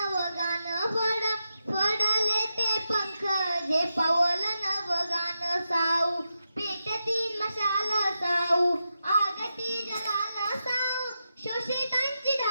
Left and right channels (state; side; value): inverted; both; correlation -0.88